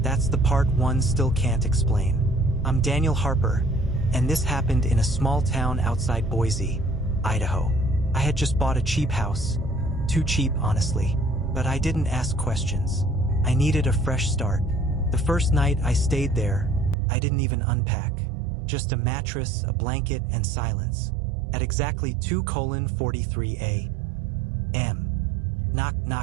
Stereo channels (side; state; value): left; drops out; at 16.9 s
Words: That's the part one still can't explain. I'm Daniel Harper, and this happened in a small town outside Boise, Idaho. I had just bought a cheap house. Too cheap, honestly. But I didn't ask questions. I needed a fresh start. The first night I stayed there, I didn't even unpack. Just a mattress, a blanket, and silence. At exactly 2:43 a.m. Knock,